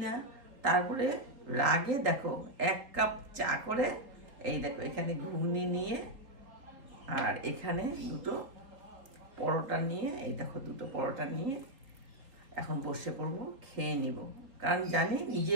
না। তারপরে রাগে দেখো 1 কাপ চা করে, এই দেখো এখানে ঘুগনি নিয়ে আর এখানে 2টো পরোটা নিয়ে, এই দেখো 2টো পরোটা নিয়ে এখন বসে পড়বো, খেয়ে নিব। কারণ জানি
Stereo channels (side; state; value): left; late; 3.8 ms